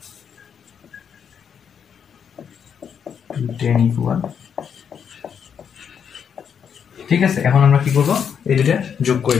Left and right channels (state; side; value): quieter; right; 7.5 dB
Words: 10 = ঠিক আছে। এখন আমরা কি করবো, এই দুটা যোগ করে